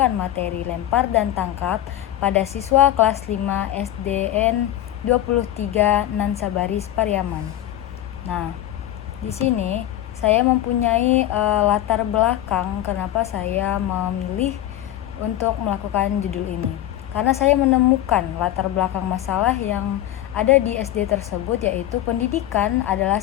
materi lempar dan tangkap pada siswa kelas 5 SDN 23 Nansabaris Pariaman. Nah, di sini saya mempunyai latar belakang kenapa saya memilih untuk melakukan judul ini. Karena saya menemukan latar belakang masalah yang ada di SD tersebut, yaitu pendidikan adalah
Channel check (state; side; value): quieter; right; 13.0 dB